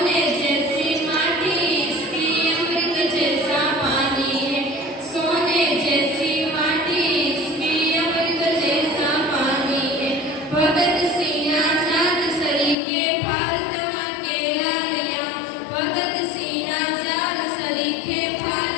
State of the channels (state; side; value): drops out; right; at 12.8 s